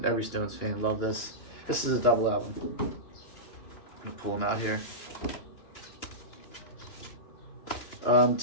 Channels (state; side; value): late; right; 2.9 ms